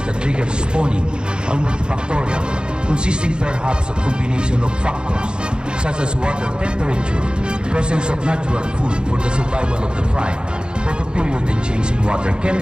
that trigger spawning are multifactorial, consisting perhaps of combination of factors such as water temperature, presence of natural food for the survival of the fry, photoperiod and change in water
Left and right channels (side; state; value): left; late; 0.050 ms